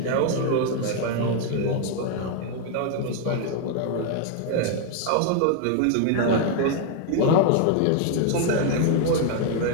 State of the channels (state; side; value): different; both; correlation 0.00